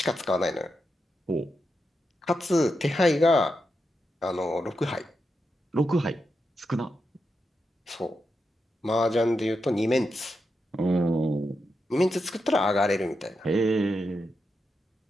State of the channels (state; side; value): normal; both; correlation 0.86